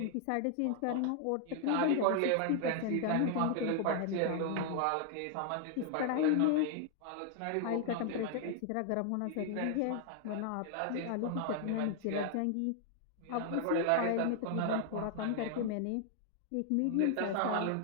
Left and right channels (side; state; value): both; different; correlation 0.00